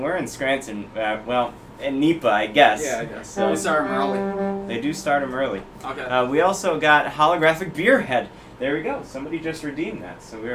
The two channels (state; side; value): identical; both; correlation 1.00